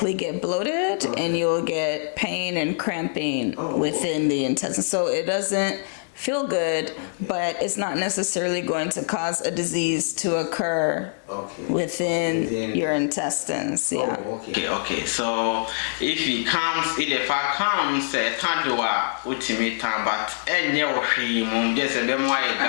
get bloated, and you'll get pain and cramping within the intestine. So it doesn't feel good, but it's not necessarily going to cause a disease to occur within your intestines. Yeah. Okay. So if the fat comes, ultimate time, but just a them why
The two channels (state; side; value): silent; right; 62 dB below the other